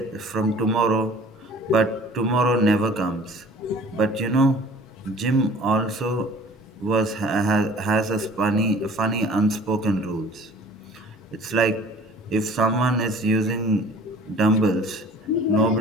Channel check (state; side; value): normal; both; correlation 0.48